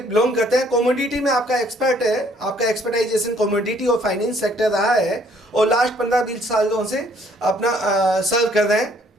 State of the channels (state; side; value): normal; both; correlation 0.62